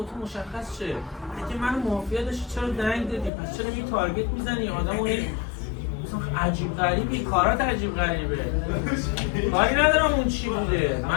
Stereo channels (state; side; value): drops out; right; at 3.3 s